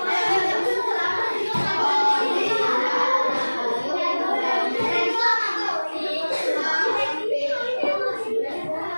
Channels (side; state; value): both; inverted; correlation -1.00